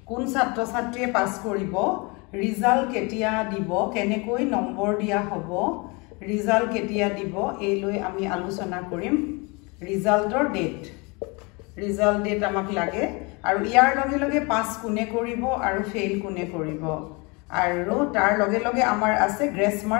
কোন ছাত্ৰ ছাত্ৰীয়ে পাছ কৰিব ৰিজাল্ট কেতিয়া দিব কেনেকৈ নম্বৰ দিয়া হ'ব ৰিজাল্ট কেতিয়া দিব এই লৈ আমি আলোচনা কৰিম ৰিজাল্টৰ ডেট আমাক লাগে আৰু ইয়াৰ লগে লগে পাছ কোনে কৰিব আৰু ফেইল কোনে কৰিব আৰু তাৰ লগে লগে আমাৰ আছে গ্ৰেছ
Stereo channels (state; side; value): quieter; right; 28.7 dB